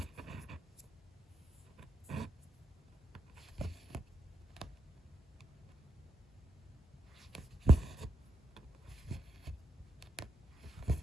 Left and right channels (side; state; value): both; normal; correlation 0.81